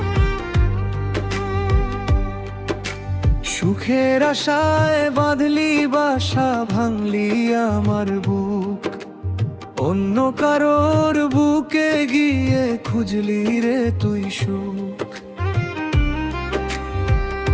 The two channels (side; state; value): both; identical; correlation 1.00